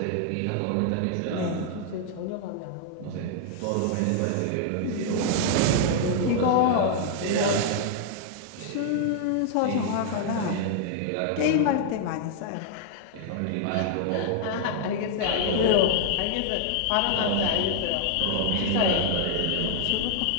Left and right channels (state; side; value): different; both; correlation -0.01